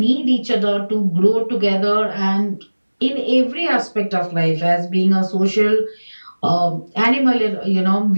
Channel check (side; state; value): both; inverted; correlation -1.00